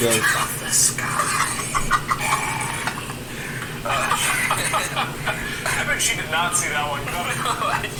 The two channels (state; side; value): identical; both; correlation 1.00